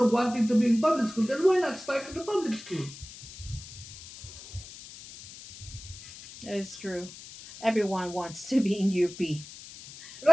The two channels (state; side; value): noise; left; hiss, 15 dB below the sound